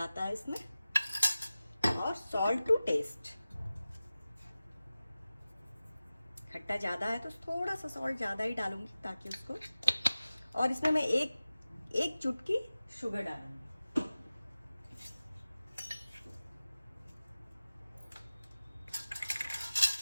है इसमें। और सॉल्ट टू टेस्ट, खट्टा ज़्यादा है तो थोड़ा सा सॉल्ट ज़्यादा ही डालूंगी ताकि उसको, और इसमें मैं एक चुटकी शुगर डालूंगी।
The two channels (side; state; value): both; inverted; correlation -0.96